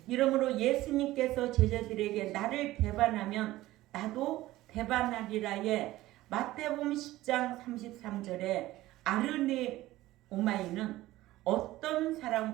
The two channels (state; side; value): quieter; left; 16.7 dB